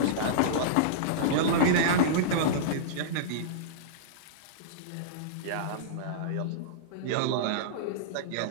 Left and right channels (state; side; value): different; both; correlation -0.03